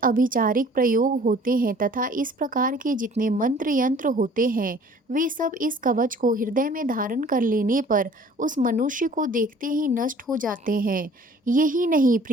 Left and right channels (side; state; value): both; normal; correlation 0.52